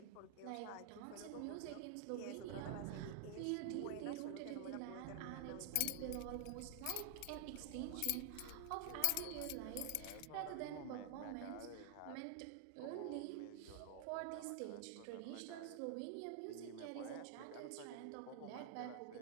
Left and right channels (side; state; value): both; different; correlation 0.00